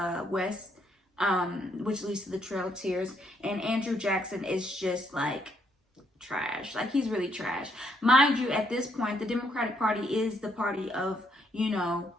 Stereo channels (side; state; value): both; normal; correlation 0.72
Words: west, which leads to the Trail of Tears. And Andrew Jackson is just like trash. Like, he's really trash. Mind you, at this point, the Democratic Party is the party of, you know,